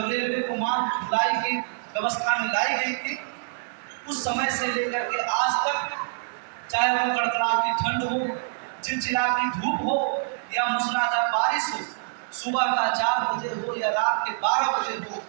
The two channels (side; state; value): left; silent; digital silence